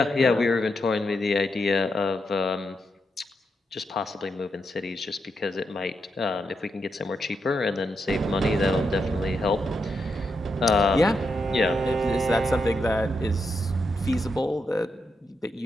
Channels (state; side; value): normal; both; correlation 0.83